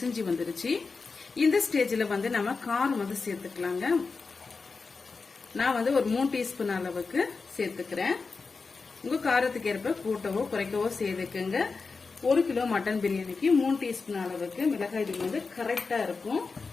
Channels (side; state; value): right; quieter; 4.4 dB